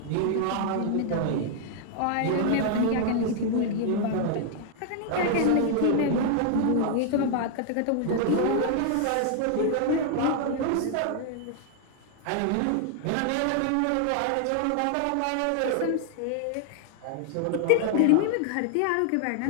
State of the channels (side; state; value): both; different; correlation 0.00